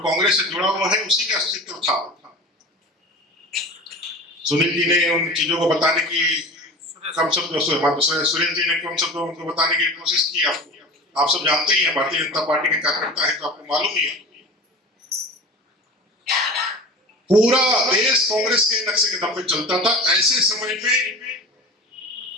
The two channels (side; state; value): both; normal; correlation 0.35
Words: कांग्रेस से जुड़ा हुआ है उसी का अस्तित्व था। सुनील जी ने उन चीजों को बताने की सुरेंद्र जी ने कम शब्दों उनको बताने की कोशिश की। आप सब जानते ही हैं, भारतीय जनता पार्टी के कार्यकर्ता है तो आपको मालूम ही है। पूरा देश कांग्रेस के नक्शे के दम पे चलता था। ऐसे समय पे